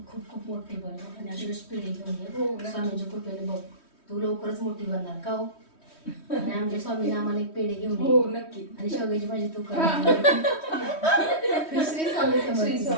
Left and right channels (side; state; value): right; late; 3.1 ms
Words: खूप खूप मोठी बन आणि अशी पिढी घेऊन ये. स्वामींच्या कृपेने बघ तू लवकरच मोठी बनणार का हो. आणि आमच्या स्वामीने आम्हाला एक पेढे घेऊन हो नक्की. आणि शेवग्याची भाजी तू कर. श्री